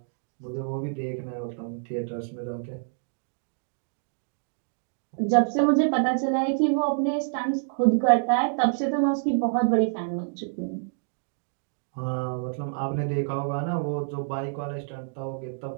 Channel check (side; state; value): left; silent; digital silence